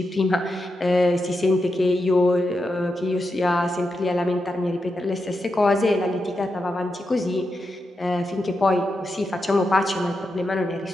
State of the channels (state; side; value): normal; both; correlation 0.87